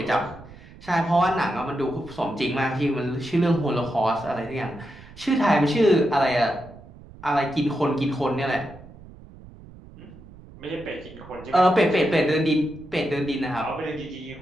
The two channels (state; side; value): noise; right; rumble, 19 dB below the sound